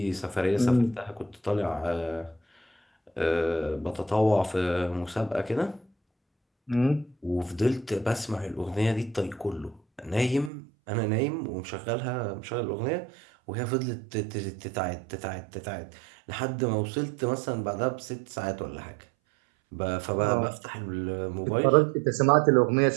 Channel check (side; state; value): left; drops out; at 10.5 s